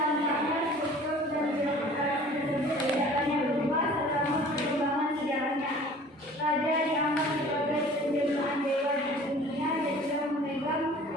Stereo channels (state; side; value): normal; both; correlation 0.47